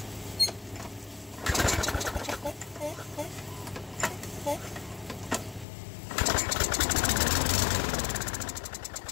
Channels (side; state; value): right; drops out; at 5.7 s